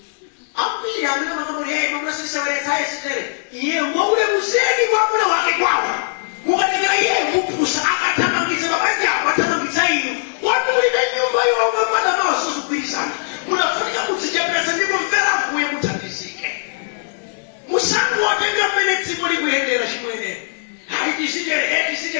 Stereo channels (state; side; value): silent; right; digital silence